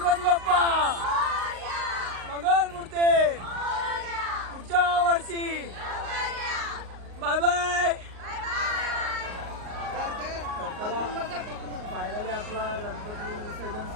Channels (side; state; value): left; late; 38 ms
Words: बाप्पा मंगल मूर्ती पुढच्या वर्षी. Bye bye. फायनली आपला गणपती विसर्जन